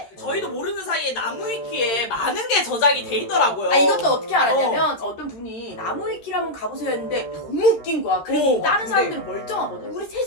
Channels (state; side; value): late; right; 13 ms